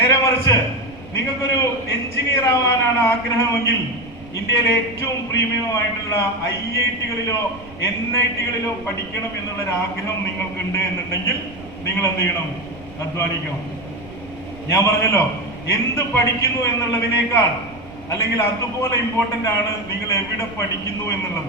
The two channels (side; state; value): right; noise; rumble, 20 dB below the sound